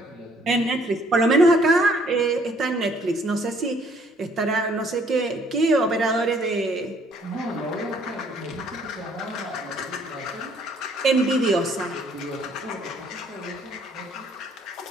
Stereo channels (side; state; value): both; normal; correlation 0.63